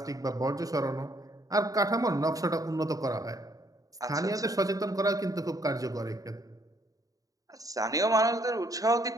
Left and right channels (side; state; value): left; late; 0.17 ms